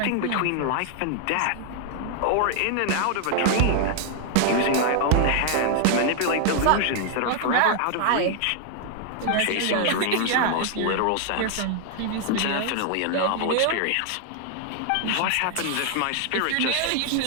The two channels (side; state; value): both; different; correlation 0.00